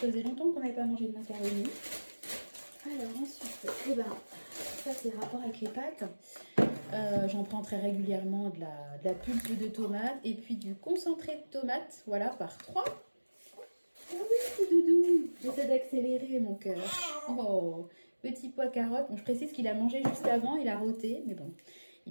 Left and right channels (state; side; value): inverted; both; correlation -1.00